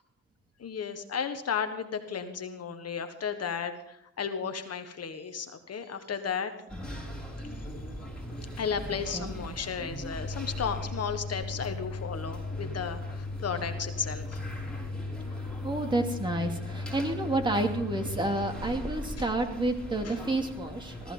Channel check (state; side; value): normal; both; correlation 0.37